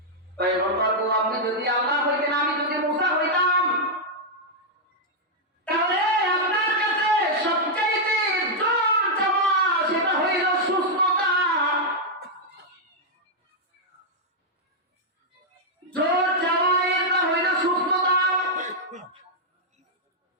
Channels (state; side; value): normal; both; correlation -0.04